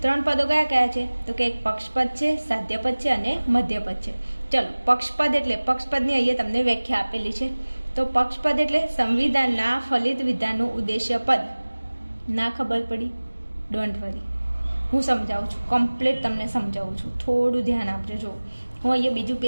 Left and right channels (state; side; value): inverted; both; correlation -1.00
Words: 3 પદો કયા કયા છે તો કે એક પક્ષપદ છે, સાધ્યપદ છે અને મધ્યપદ છે. ચલો, પક્ષપદ એટલે પક્ષપદની અહીંયા તમને વ્યાખ્યા આપેલી છે. તો પક્ષપદ એટલે સંવિધાનના ફલિત વિધાનનું ઉદ્દેશ્ય પદ. ના ખબર પડી? ડોન્ટ વરી, હું સમજાવું છું, કમ્પ્લીટ તમને સમજાવું છું. થોડું ધ્યાન આપજો. જો હું અહીંયા બીજું